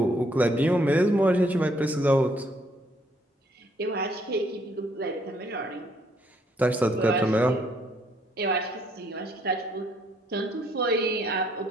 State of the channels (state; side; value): normal; both; correlation 0.68